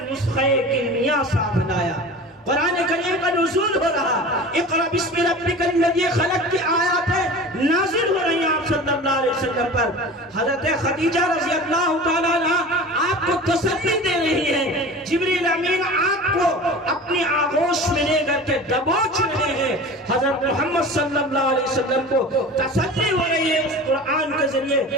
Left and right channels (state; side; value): normal; both; correlation 0.37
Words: نسخہ کیمیا ساتھ لایا۔ قرآن کریم کا نزول ہو رہا، اقرأ بسم ربک الذی خلق کی آیاتیں نازل ہو رہی ہیں آپ صلی اللہ علیہ وسلم پر۔ حضرت خدیجہ رضی اللہ تعالیٰ عنہ آپ کو تسلی دے رہی ہیں، جبریل امین آپ کو اپنی آغوش میں لے کر کے دبوچ رہے ہیں، حضرت محمد صلی اللہ علیہ وسلم کو تسلی ہو رہی ہے اس قرآن کے ذریعے